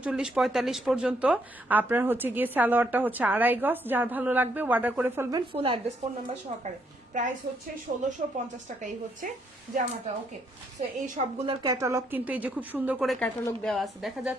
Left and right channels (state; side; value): normal; both; correlation 0.73